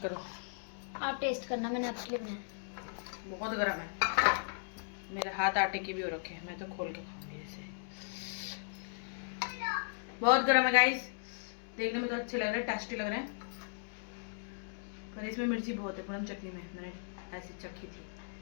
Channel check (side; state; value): right; silent; digital silence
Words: करो। आप टेस्ट करना, मैंने आपके लिए बनाया। बहुत गर्म है, मेरे हाथ आटे के भी हो रखे हैं। मैं तो खोल के खाऊंगी ऐसे। बहुत गर्म है गाइस, देखने में तो अच्छे लग रहे हैं, टेस्टी लग रहे हैं, पर इसमें मिर्ची बहुत है। पूनम चटनी में मैंने ऐसी चखी थी।